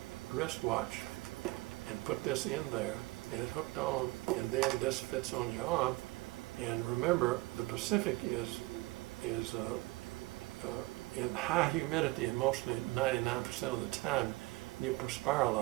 wristwatch and put this in there, and it hooked on, and then this fits on your arm. And remember, the Pacific is in high humidity, and mostly 99% of the time you perspire a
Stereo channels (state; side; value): quieter; left; 22.0 dB